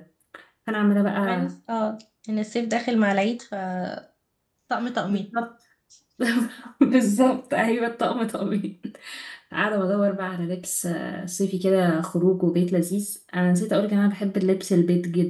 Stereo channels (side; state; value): both; identical; correlation 1.00